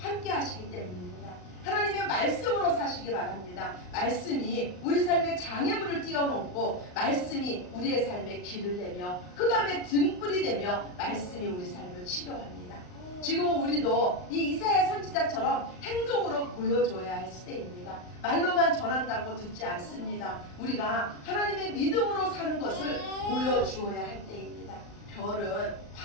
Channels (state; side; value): late; right; 39 ms